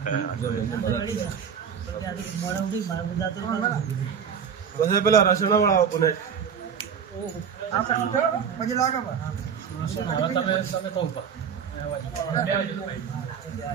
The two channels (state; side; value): quieter; left; 7.2 dB